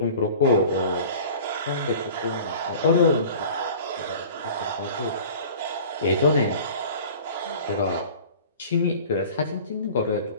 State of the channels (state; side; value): inverted; both; correlation -0.42